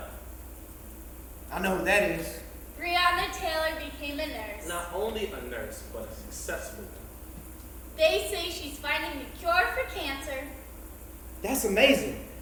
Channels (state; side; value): identical; both; correlation 1.00